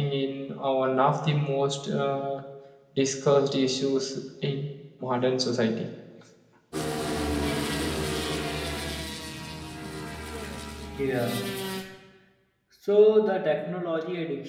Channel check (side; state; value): both; identical; correlation 1.00